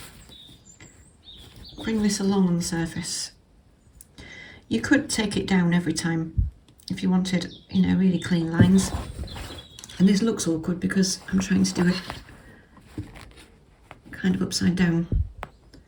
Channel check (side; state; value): both; identical; correlation 1.00